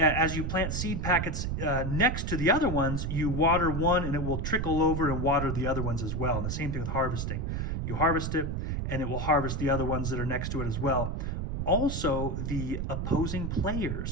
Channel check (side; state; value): right; noise; rumble, 2 dB below the sound